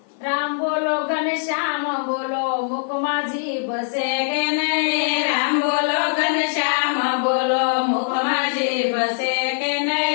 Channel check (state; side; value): silent; right; 57 dB below the other